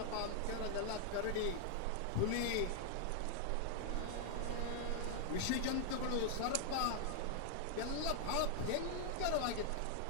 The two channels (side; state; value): both; different; correlation 0.00